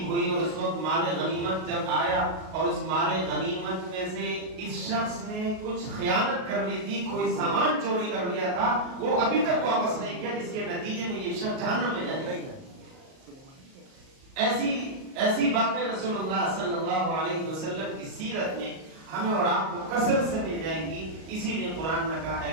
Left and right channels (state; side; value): late; left; 38 ms